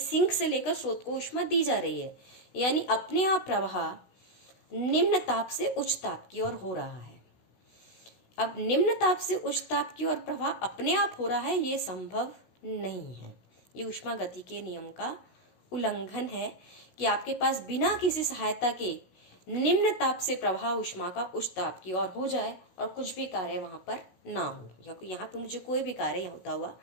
से लेकर स्रोत को ऊष्मा दी जा रही है, यानी अपने आप प्रवाह निम्न ताप से उच्च ताप की ओर हो रहा है। अब निम्न ताप से उच्च ताप की ओर प्रवाह अपने आप हो रहा है, ये संभव नहीं है। ये ऊष्मागतिकी के नियम का उल्लंघन है कि आपके पास बिना किसी सहायता के निम्न ताप से प्रवाह ऊष्मा का उच्च ताप की ओर हो जाए और कुछ भी कार्य वहां पर ना हो, या यहाँ पर मुझे कोई भी कार्य होता हुआ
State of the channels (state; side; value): late; right; 16 ms